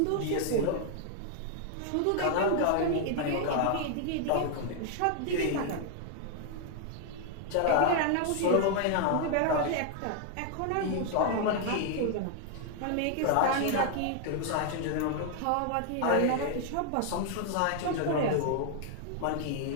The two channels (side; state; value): both; different; correlation 0.00